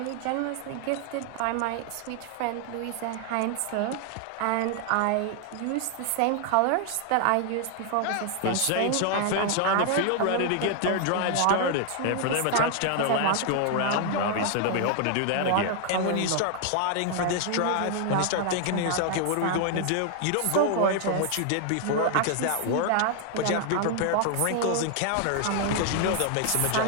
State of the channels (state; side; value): different; both; correlation 0.00